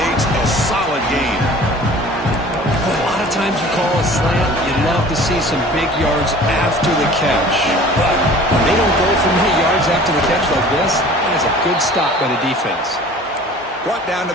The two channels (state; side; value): normal; both; correlation 0.46